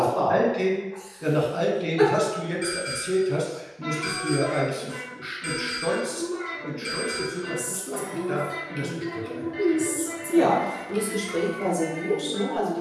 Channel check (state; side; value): identical; both; correlation 1.00